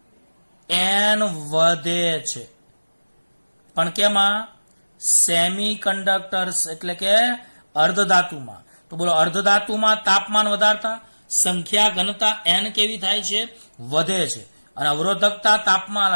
n વધે છે. પણ કેમાં? સેમી કંડક્ટર્સ એટલે કે અર્ધ ધાતુમાં. તો બોલો, અર્ધ ધાતુમાં તાપમાન વધારતા સંખ્યા ઘનતા n કેવી થાય છે? વધે છે. અને અવરોધકતા તાપમાન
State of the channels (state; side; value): inverted; both; correlation -1.00